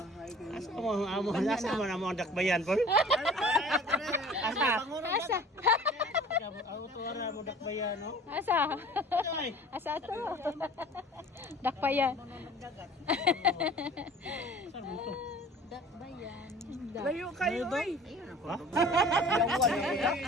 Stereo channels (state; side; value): normal; both; correlation 0.46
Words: Asa mo ang dakbayan po? Asa? Asa? Ako tuwara mo dakbayan no? Asa? Asa to? Dakpayan. Saan mo to? Dakbayan. Layo kayo oy. Ha?